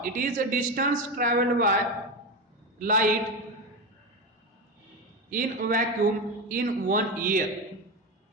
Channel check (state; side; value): normal; both; correlation 0.17